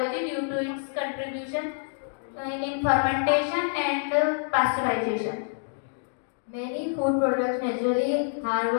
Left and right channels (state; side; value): silent; right; digital silence